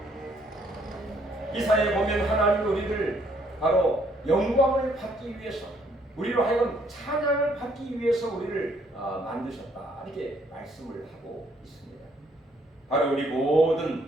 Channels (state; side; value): normal; both; correlation 0.67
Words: 이사야에 보면 하나님 우리를 바로 영광을 받기 위해서 우리로 하여금 찬양을 받기 위해서 우리를 만드셨다. 이렇게 말씀을 하고 있습니다. 바로 우리